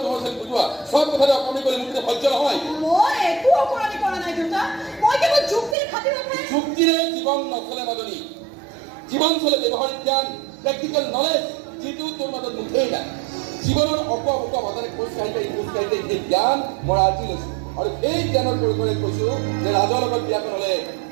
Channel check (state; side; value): drops out; left; at 5.8 s